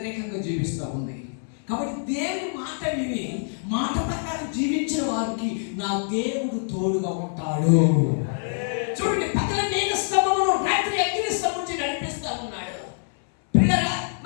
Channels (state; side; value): silent; right; 62 dB below the other